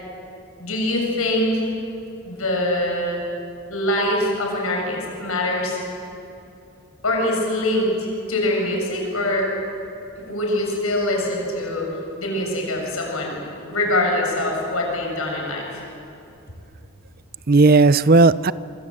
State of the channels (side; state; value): both; normal; correlation 0.20